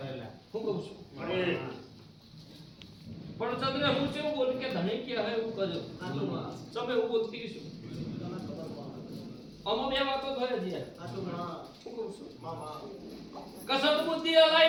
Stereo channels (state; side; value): identical; both; correlation 1.00